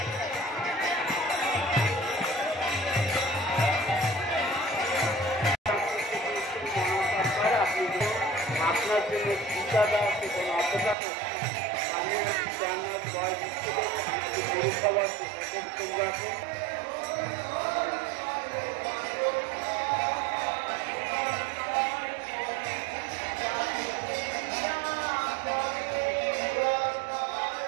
আপনার জন্য টিকাটা আছে কোনো অপেক্ষা করছে আমি জানার বয়স পৌরসভার আছে।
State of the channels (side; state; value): left; drops out; at 11.0 s